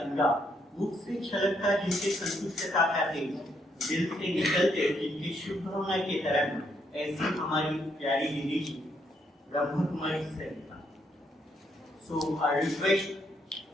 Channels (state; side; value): normal; both; correlation 0.75